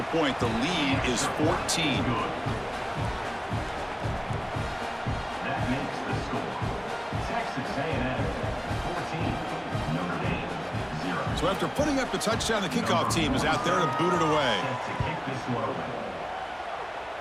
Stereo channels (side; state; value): both; identical; correlation 1.00